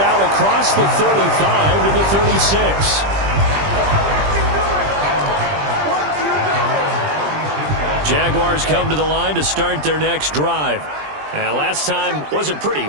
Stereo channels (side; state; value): left; late; 20 ms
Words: across the 35 to the 36. Jaguars come to the line to start their next drive. And last time wasn't pretty.